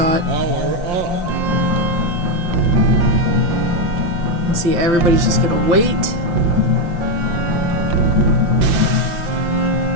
And see, everybody's just gonna wait.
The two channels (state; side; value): late; left; 5.7 ms